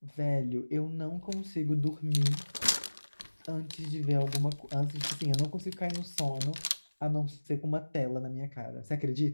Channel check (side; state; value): both; inverted; correlation -1.00